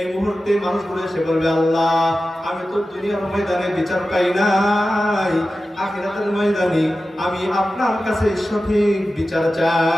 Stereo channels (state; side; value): normal; both; correlation 0.94